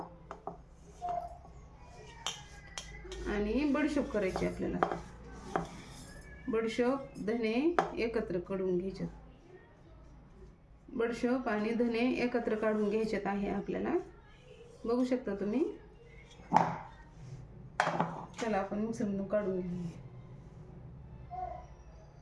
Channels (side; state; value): both; identical; correlation 1.00